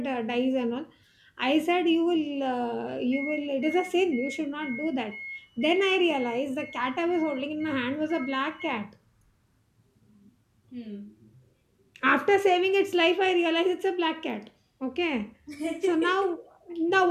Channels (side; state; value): both; identical; correlation 1.00